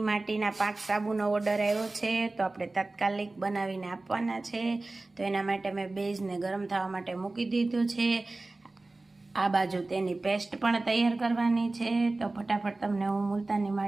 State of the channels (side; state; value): left; quieter; 3.1 dB